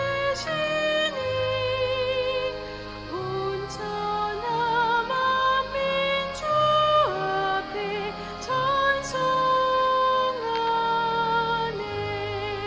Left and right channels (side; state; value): both; identical; correlation 1.00